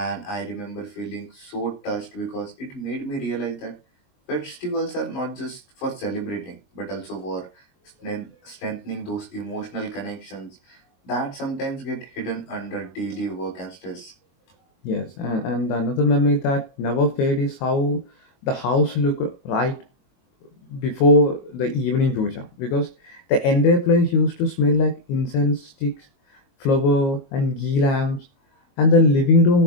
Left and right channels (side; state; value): right; late; 22 ms